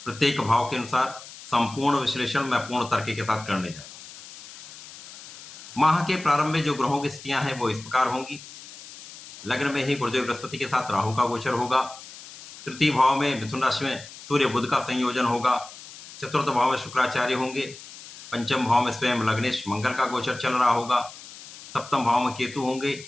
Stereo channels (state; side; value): noise; left; hiss, 16 dB below the sound